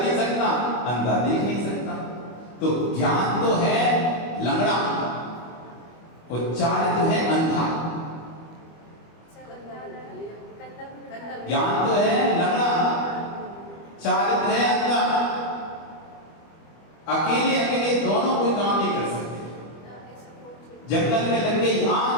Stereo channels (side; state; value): right; late; 25 ms